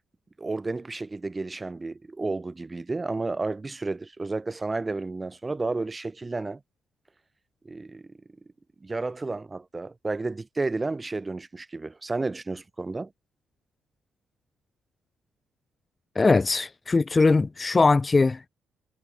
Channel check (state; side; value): normal; both; correlation 0.95